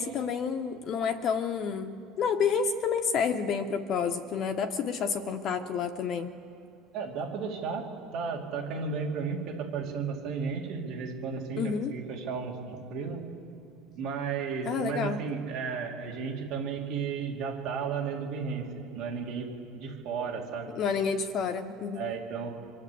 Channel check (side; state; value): both; normal; correlation 0.41